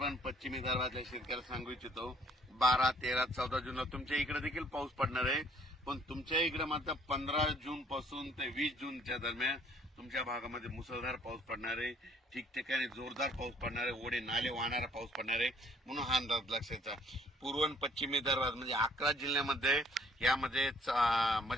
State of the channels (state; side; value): normal; both; correlation 0.60